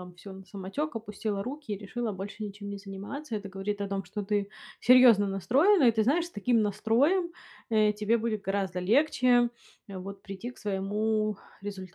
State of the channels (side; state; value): both; identical; correlation 1.00